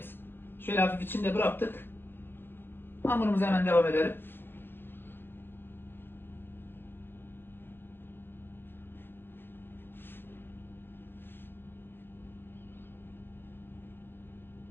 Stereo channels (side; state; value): right; late; 0.10 ms